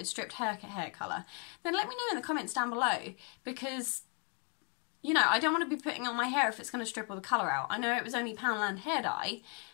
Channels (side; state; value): right; quieter; 37.6 dB